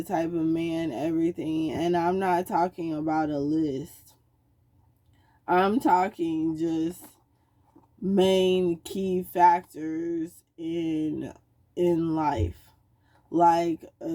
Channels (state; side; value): identical; both; correlation 1.00